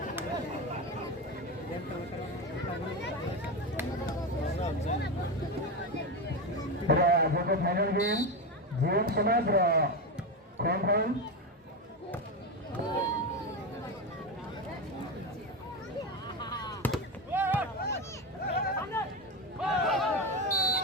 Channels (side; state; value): both; normal; correlation 0.15